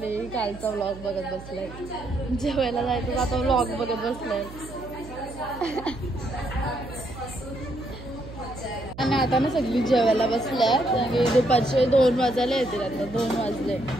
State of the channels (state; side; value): noise; right; hum, 15 dB below the sound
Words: कालचा व्लॉग बघत बसलाय. जेवायला जायचं आता व्लॉग बघत बसलाय. आणि आता ना सगळी जेवायला बसल्यात आणि दुपारचे 2 वाजायला येतील. आता 2 वाजले